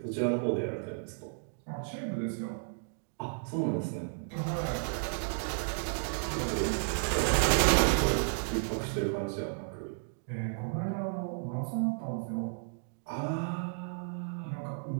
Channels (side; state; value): left; silent; digital silence